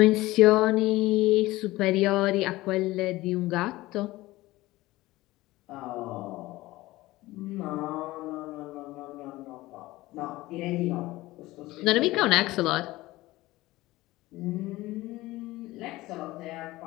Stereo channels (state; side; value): quieter; right; 18.5 dB